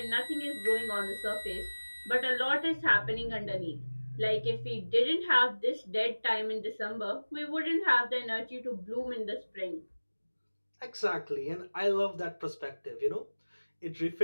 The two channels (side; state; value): both; inverted; correlation -1.00